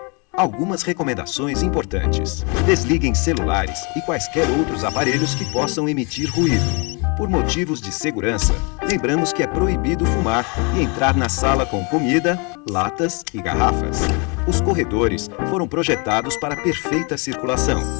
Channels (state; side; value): quieter; right; 32.2 dB